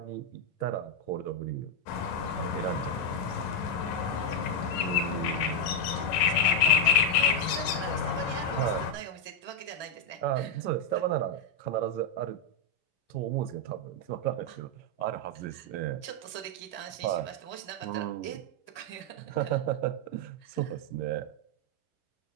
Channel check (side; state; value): right; late; 11 ms